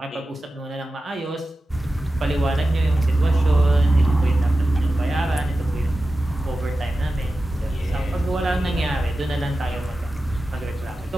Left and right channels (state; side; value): normal; both; correlation 0.93